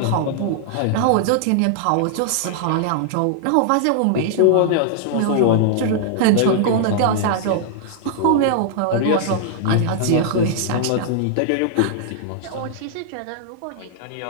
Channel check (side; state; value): both; different; correlation -0.01